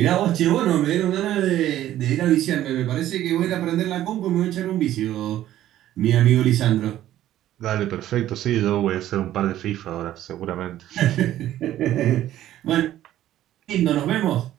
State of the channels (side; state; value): left; quieter; 13.0 dB